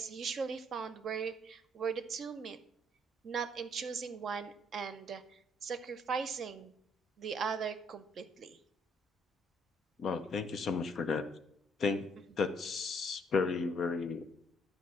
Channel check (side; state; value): both; normal; correlation 0.67